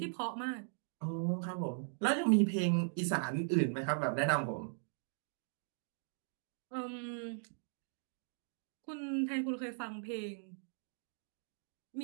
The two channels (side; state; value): left; silent; digital silence